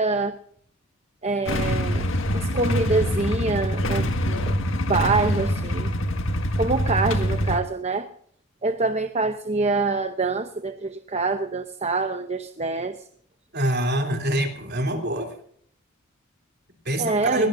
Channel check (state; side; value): normal; both; correlation 0.41